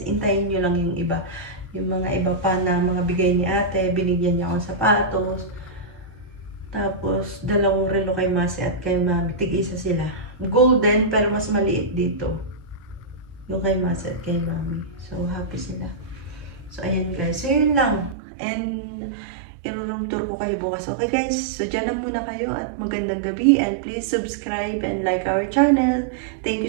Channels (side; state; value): left; drops out; at 18.2 s